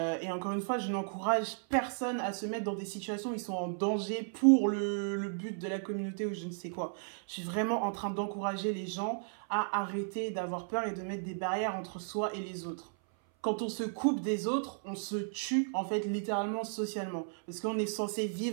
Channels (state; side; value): silent; left; 55 dB below the other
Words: encore une fois, je n'encourage personne à se mettre dans des situations où ils sont en danger pour le but de la communauté ou je ne sais quoi. Je suis vraiment en train d'encourager les gens à arrêter d'avoir peur et de mettre des barrières entre soi et les autres. Quand on se coupe des autres, on se tue en fait littéralement socialement. Parce qu'on est censé